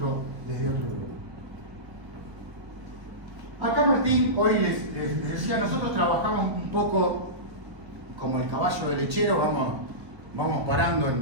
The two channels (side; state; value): left; late; 1.6 ms